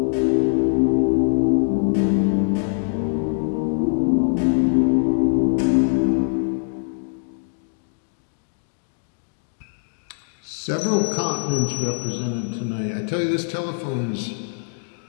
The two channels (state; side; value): silent; right; digital silence